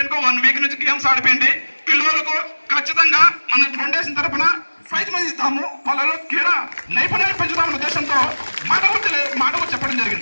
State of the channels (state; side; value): inverted; both; correlation -1.00